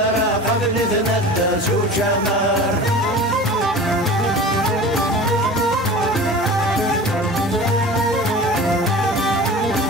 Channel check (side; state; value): both; normal; correlation 0.37